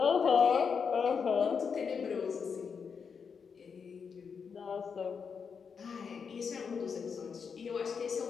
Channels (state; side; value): quieter; right; 6.1 dB